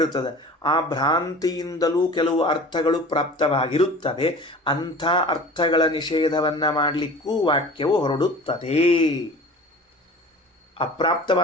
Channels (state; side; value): normal; both; correlation 0.41